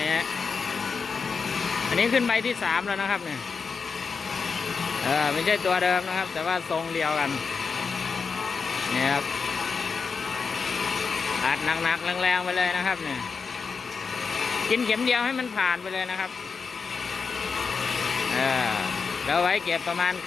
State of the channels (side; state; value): right; quieter; 5.3 dB